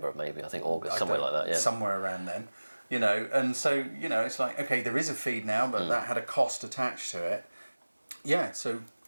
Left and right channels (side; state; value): both; inverted; correlation -1.00